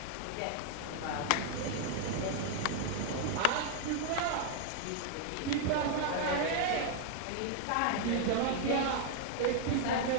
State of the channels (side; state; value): both; different; correlation 0.00